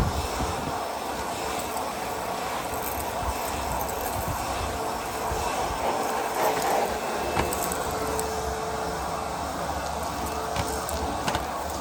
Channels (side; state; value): both; identical; correlation 1.00